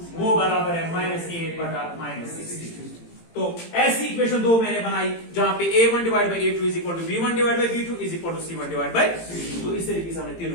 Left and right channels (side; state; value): right; late; 18 ms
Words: वो बराबर है -8 बटा -16। तो ऐसी इक्वेशन दो मैंने बनाई जहां पे A1 divide by A2 is equal to B1 divide by B2 is equal to C1 divide by, तो इस तरीके से हमने